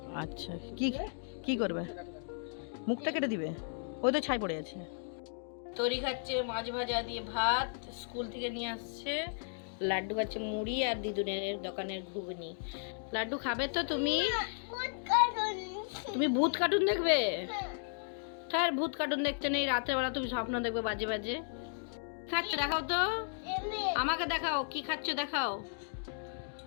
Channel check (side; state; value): right; silent; digital silence